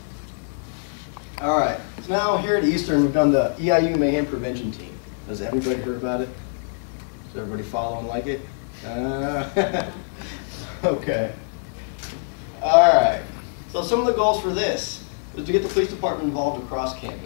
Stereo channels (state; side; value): silent; right; digital silence